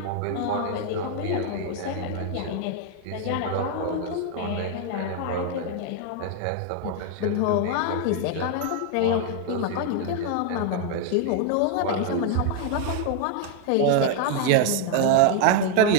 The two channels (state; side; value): different; both; correlation 0.00